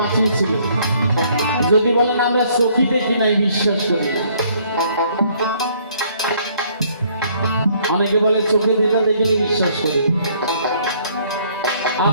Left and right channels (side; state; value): both; inverted; correlation -0.63